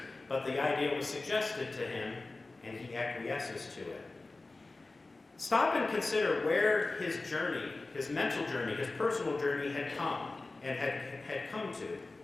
but the idea was suggested to him, and he acquiesces to it. Stop and consider where his journey, his mental journey, his personal journey had come and had come to.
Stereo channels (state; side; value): quieter; right; 3.3 dB